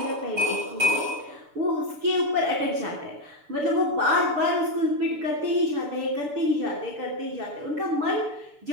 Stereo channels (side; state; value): left; late; 6.8 ms